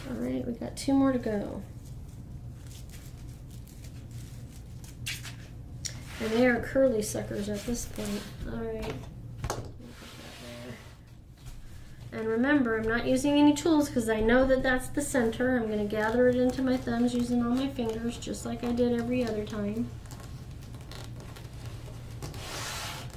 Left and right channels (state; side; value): identical; both; correlation 1.00